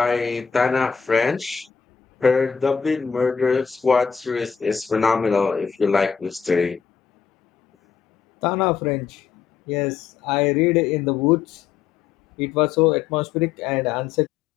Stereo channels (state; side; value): quieter; right; 6.7 dB